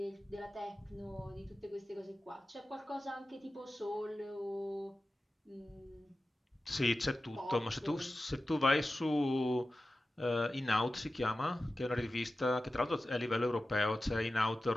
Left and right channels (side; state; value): both; normal; correlation 0.94